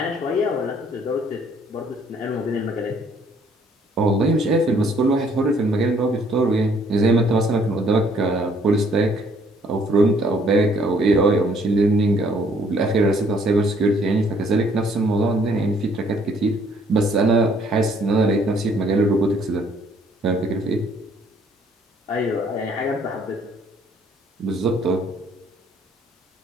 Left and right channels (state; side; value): normal; both; correlation 0.63